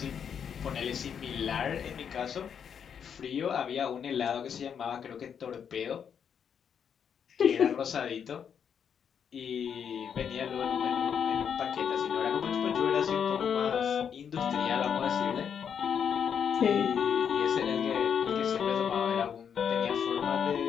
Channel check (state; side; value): quieter; right; 7.7 dB